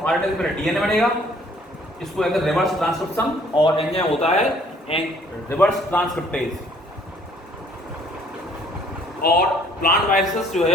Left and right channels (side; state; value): both; normal; correlation 0.59